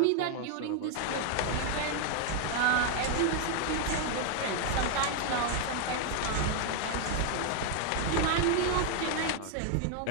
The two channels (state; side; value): different; both; correlation 0.00